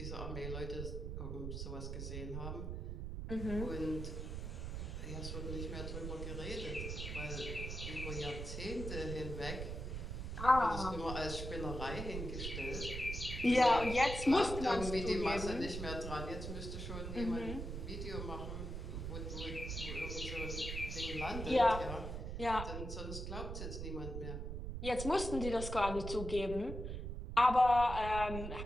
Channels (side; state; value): right; noise; rumble, 5 dB below the sound